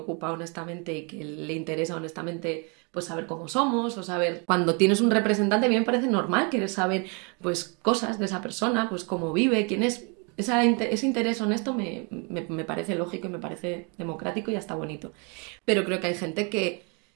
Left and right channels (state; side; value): quieter; left; 34.1 dB